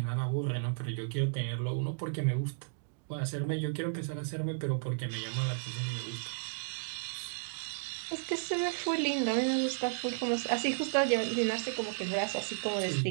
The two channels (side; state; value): left; silent; digital silence